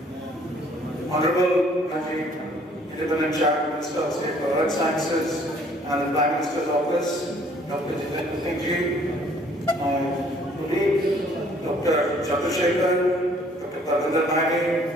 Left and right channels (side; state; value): both; normal; correlation 0.59